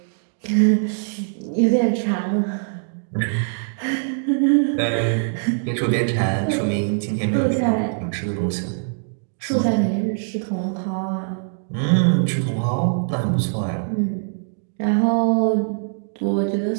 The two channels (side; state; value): left; silent; digital silence